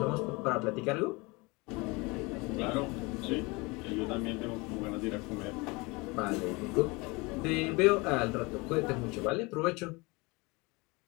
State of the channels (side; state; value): right; quieter; 25.7 dB